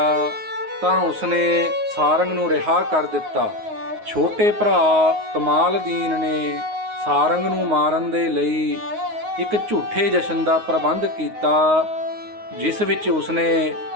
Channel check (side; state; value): left; late; 9.5 ms